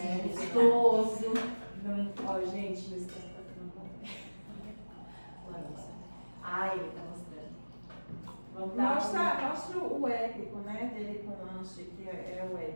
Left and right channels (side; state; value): both; inverted; correlation -1.00